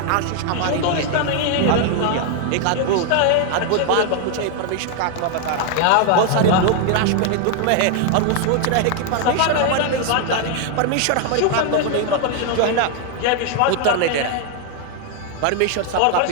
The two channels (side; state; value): both; different; correlation 0.00